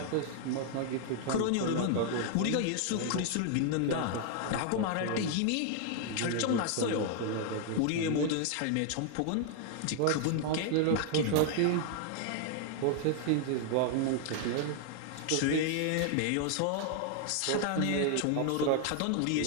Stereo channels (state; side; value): different; both; correlation 0.00